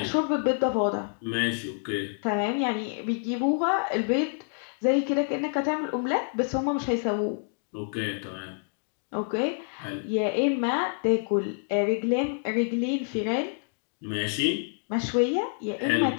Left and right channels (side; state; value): right; silent; 60 dB below the other